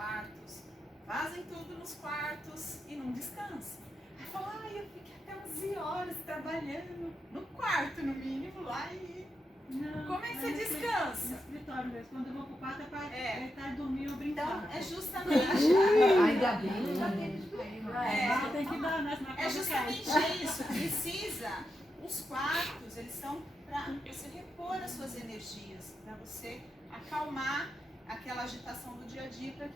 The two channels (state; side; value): normal; both; correlation 0.86